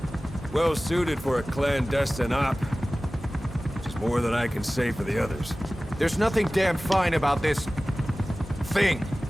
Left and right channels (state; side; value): normal; both; correlation 0.97